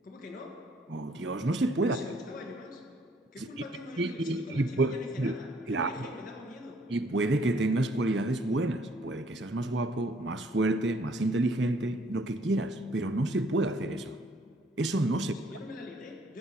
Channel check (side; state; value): both; normal; correlation 0.63